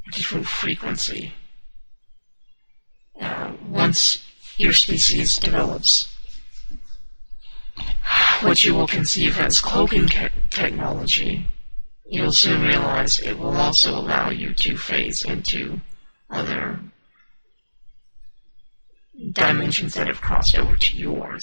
at a different frequency. Once your species develops what you will conceive as cloaking technology, you'll soon realize it will also allow you to phase into other dimensions that have crossed over to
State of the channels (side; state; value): both; inverted; correlation -1.00